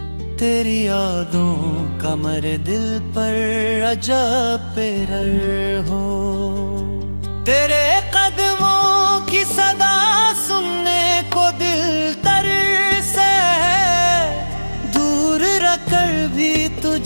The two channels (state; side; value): inverted; both; correlation -1.00